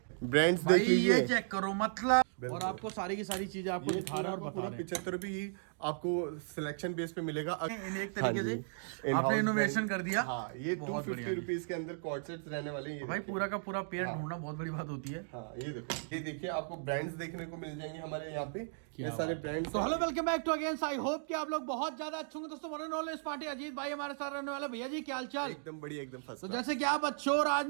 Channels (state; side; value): silent; left; digital silence